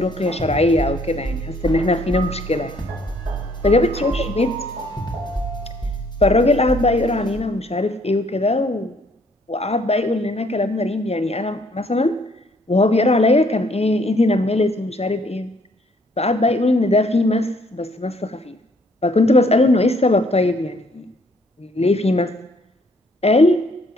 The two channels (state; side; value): normal; both; correlation 0.64